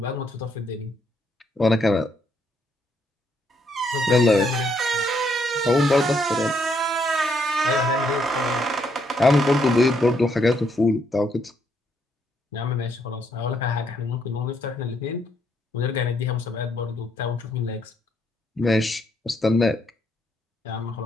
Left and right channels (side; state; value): both; normal; correlation 0.73